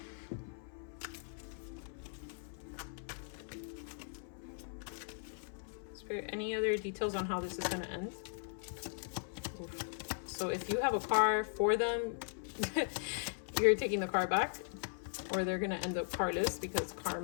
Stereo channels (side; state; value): right; silent; 52 dB below the other